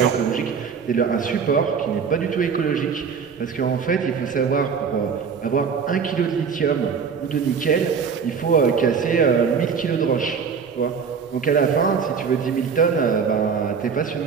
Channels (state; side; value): quieter; left; 6.2 dB